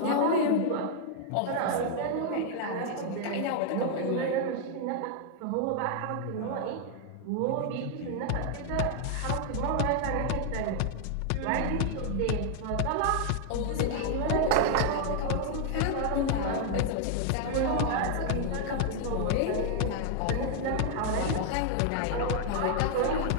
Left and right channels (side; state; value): both; different; correlation 0.00